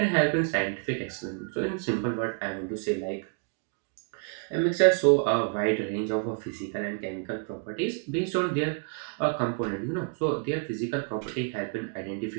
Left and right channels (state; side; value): quieter; left; 37.8 dB